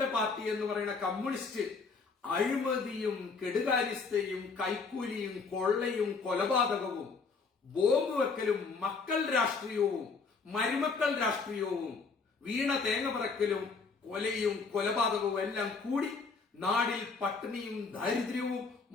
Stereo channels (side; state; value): right; quieter; 4.7 dB